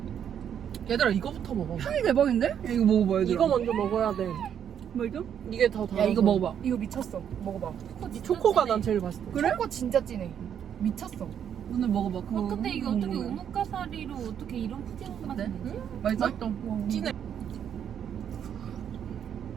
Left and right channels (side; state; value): left; quieter; 8.8 dB